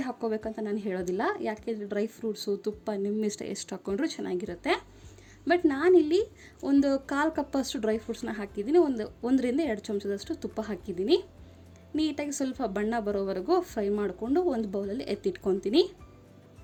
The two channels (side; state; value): both; identical; correlation 1.00